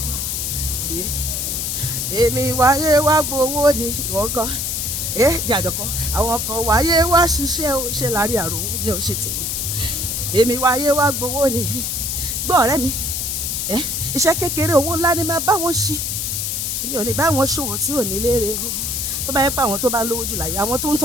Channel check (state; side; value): noise; left; hiss, 1 dB below the sound